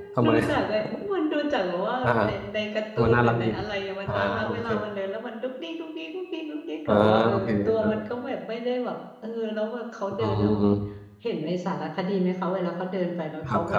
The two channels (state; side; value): identical; both; correlation 1.00